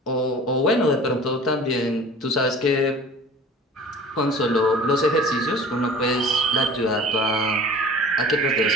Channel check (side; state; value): both; normal; correlation 0.43